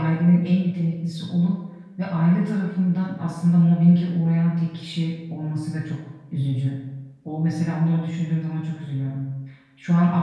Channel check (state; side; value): identical; both; correlation 1.00